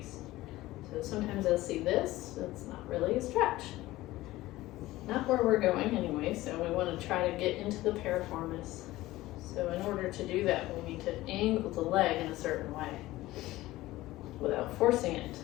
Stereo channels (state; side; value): quieter; right; 17.3 dB